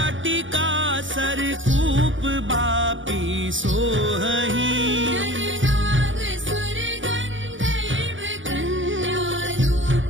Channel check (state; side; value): late; left; 0.56 ms